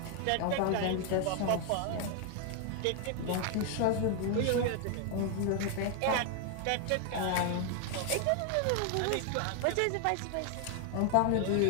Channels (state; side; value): different; both; correlation 0.00